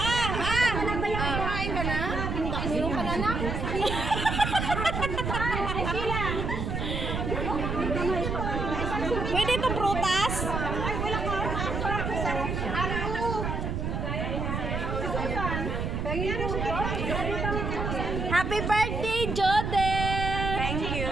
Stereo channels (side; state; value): right; noise; rumble, 2 dB below the sound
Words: Kain ka na? Meron ka na na? Pwede itong prutas? Happy birthday, Joden! thank you